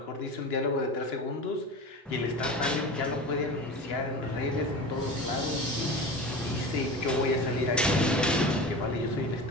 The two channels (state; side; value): normal; both; correlation 0.32